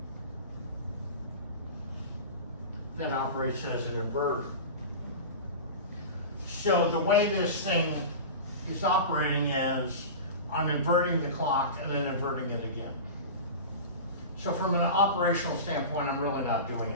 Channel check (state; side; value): inverted; both; correlation -0.30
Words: that operates as an inverter. So the way this thing is operating is I'm inverting the clock and then inverting it again. So from an operational standpoint, I'm really not doing